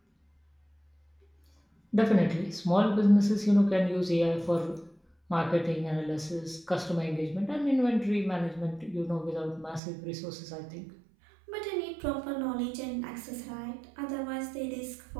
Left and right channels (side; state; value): left; drops out; at 9.8 s